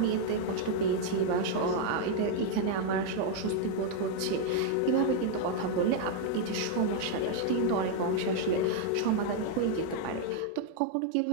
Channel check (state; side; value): different; both; correlation 0.00